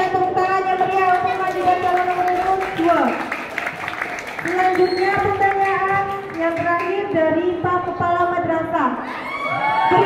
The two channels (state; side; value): identical; both; correlation 1.00